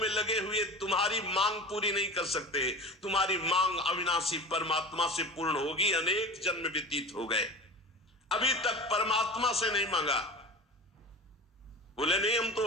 लगे हुए तुम्हारी मांग पूरी नहीं कर सकते। तुम्हारी मांग अविनाशी परमात्मा से पूर्ण होगी। अनेक जन्म व्यतीत हो गए, अभी तक परमात्मा से नहीं मांगा। बोले नहीं, हम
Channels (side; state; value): both; normal; correlation 0.32